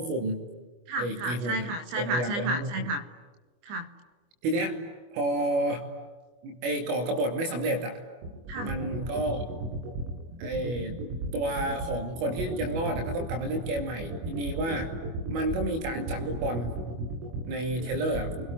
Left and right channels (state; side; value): late; left; 25 ms